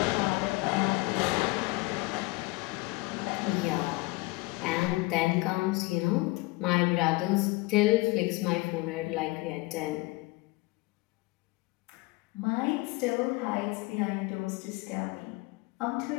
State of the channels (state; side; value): quieter; right; 22.8 dB